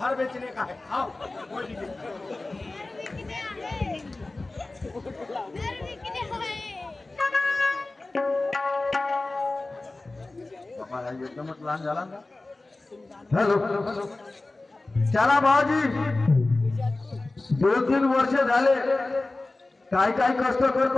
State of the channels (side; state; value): right; quieter; 3.1 dB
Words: बेचने का है आओ एकदमच लहान झाला ना. हॅलो चला भाऊजी 2-3 वर्ष झाले काय काय कष्ट